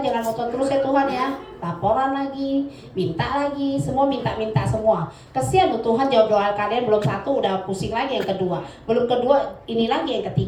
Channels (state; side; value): identical; both; correlation 1.00